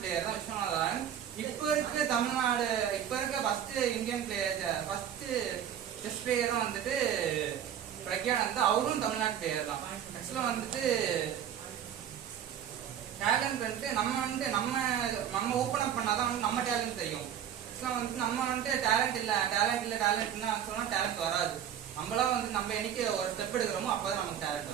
தான் விஸ்வநாதன். இப்போ இருக்க first Indian player first chess பிளேயரும் வந்துட்டு பிரக்யானந்தா, அவரும் தமிழ்நாட்டு பிளேயர் தான். ஆக்சுவலா வந்துட்டு டேலண்ட் வந்துட்டு நம்ம ஓப்பன் அப் பண்ணாதான் வந்து நம்ம டேலண்ட் தெரியும். ஆக்சுவலா வந்துட்டு நம்ம வந்துட்டு டேலண்ட்னா சொன்னா டேலண்ட் வராது. நம்மளாம் வந்து நம்ம என்னைக்கு ஒரு ஸ்டெப் எடுக்கிறோமோ அப்பதான் நமக்கு டேலண்ட்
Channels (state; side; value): quieter; left; 9.5 dB